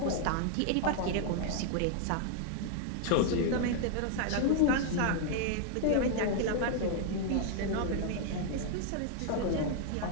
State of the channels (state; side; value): different; both; correlation 0.00